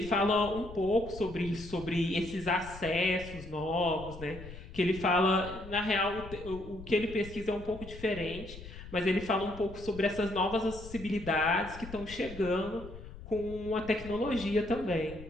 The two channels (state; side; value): noise; left; rumble, 14 dB below the sound